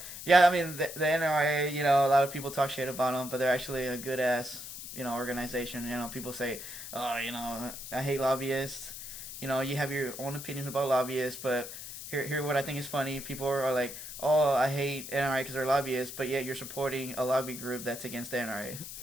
yeah, I mean the NRA. You know, a lot of people talk shit about them, but they're actually a good ass, you know, organization. You know, people say, oh, you know, I hate lobbyists. You know, you have your own opinions about lobbyists, but here what I think is funny. People are like, oh, I hate NRA because they're lobbyists, but yet you're supporting a lobby group that's against the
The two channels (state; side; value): noise; left; hiss, 10 dB below the sound